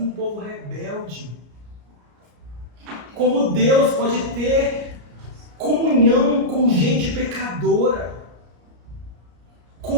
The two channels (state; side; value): late; left; 34 ms